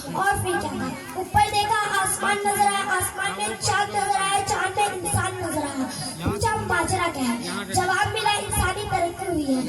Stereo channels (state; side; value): identical; both; correlation 1.00